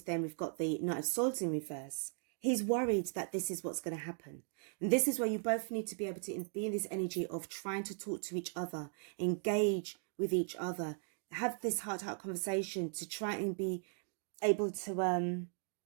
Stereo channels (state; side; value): silent; left; 52 dB below the other